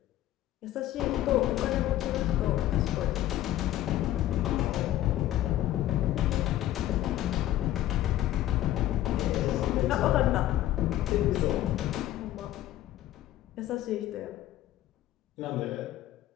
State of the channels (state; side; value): quieter; right; 13.7 dB